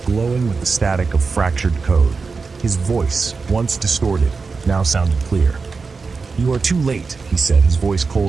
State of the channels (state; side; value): quieter; left; 4.6 dB